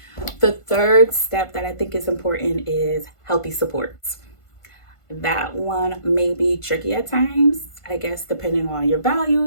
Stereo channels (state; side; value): late; right; 1.5 ms